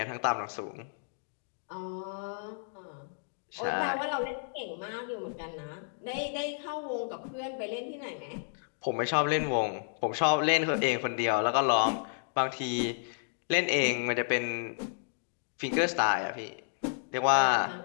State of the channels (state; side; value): silent; right; digital silence